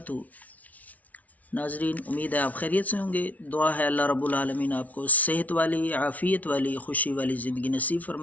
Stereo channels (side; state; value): right; late; 0.071 ms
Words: ناظرین، امید ہے آپ خیریت سے ہوں گے۔ دعا ہے اللہ رب العالمین آپ کو صحت والی، عافیت والی، خوشی والی زندگی نصیب